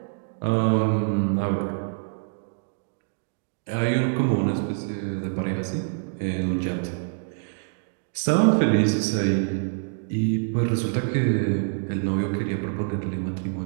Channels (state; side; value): silent; left; digital silence